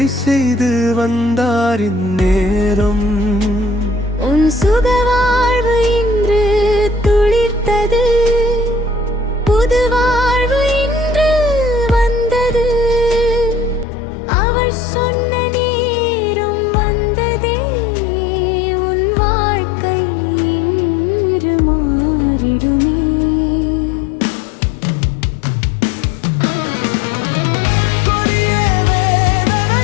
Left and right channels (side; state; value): right; drops out; at 13.9 s